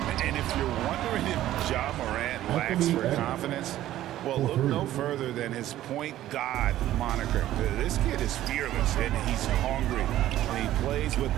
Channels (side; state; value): left; quieter; 13.7 dB